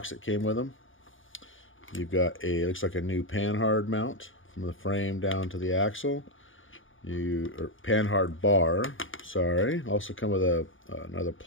that came with them. You've got a, looks like a new panhard mount from the frame down to the axle. Or panhard bar, sorry. Also come with another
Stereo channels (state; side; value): late; right; 0.57 ms